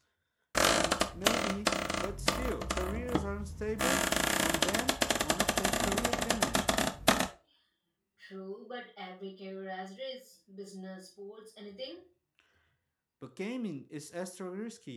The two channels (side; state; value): both; identical; correlation 1.00